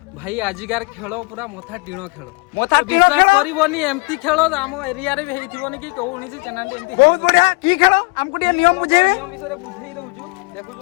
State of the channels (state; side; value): quieter; right; 30.2 dB